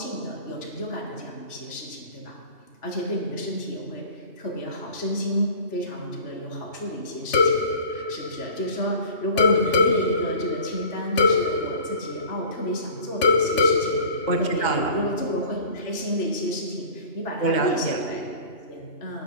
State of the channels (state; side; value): late; right; 2.8 ms